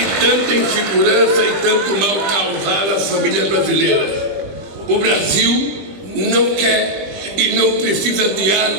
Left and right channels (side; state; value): left; late; 21 ms